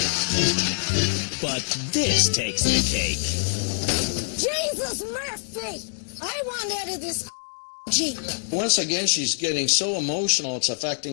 But this takes the cake. Jesus Murphy! I want out of this Jeep. Once again, she's getting so emotional, it's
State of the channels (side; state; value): right; silent; digital silence